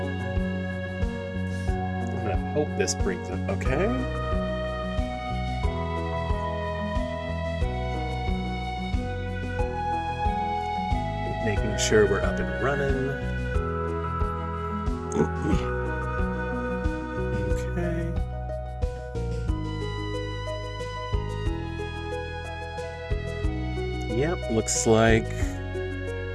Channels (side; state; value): both; identical; correlation 1.00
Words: I'm gonna hope this brings up okay. Making sure we're up and running. Okay. Yep, looks like